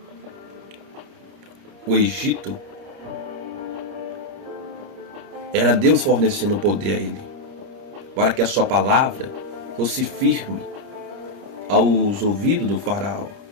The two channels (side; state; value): left; late; 30 ms